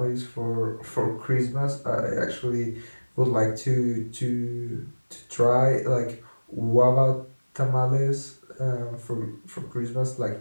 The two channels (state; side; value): inverted; both; correlation -1.00